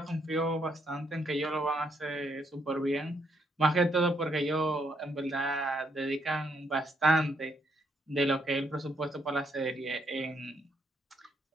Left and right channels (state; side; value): normal; both; correlation 0.74